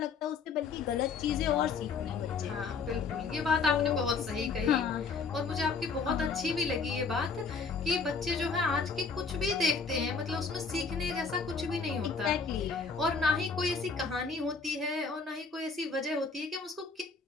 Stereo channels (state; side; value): quieter; right; 4.9 dB